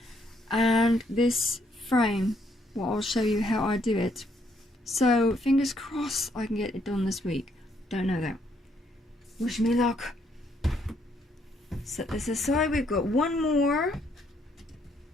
And this frame, well, I'll show you how I do it. So fingers crossed I can get it done this week. Don't know though. Wish me luck. Set this aside. We've got one more,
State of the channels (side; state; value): both; normal; correlation 0.71